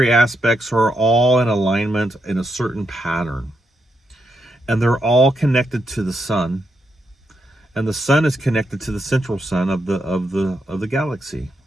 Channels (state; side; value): normal; both; correlation 0.82